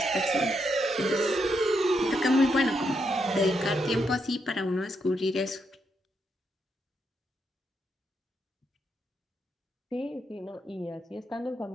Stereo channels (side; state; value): both; normal; correlation 0.80